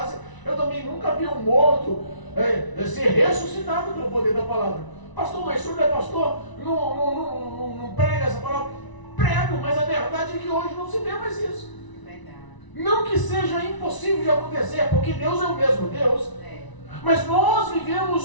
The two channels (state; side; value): late; right; 1.0 ms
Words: eu também nunca vi um morto ser ressuscitado pelo poder da palavra. Pastor, mas o senhor não é pastor? Não prega essa palavra? Prego, mas a verdade é que hoje não se vê mais isso. Não que seja impossível de acontecer, porque Deus é o mesmo Deus. Mas nós